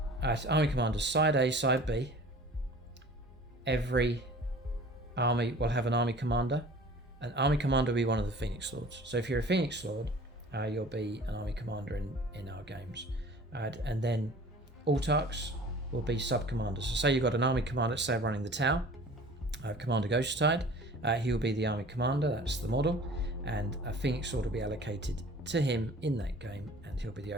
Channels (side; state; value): both; normal; correlation 0.45